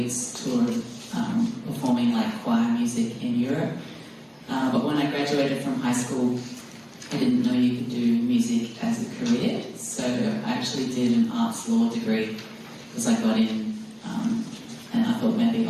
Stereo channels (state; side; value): identical; both; correlation 1.00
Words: tour performing like choir music in Europe. But when I graduated from high school, I didn't know you could do music as a career, so I actually did an arts law degree because I got in, and I thought maybe